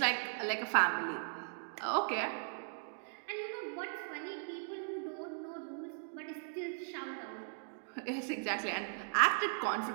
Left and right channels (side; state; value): left; silent; digital silence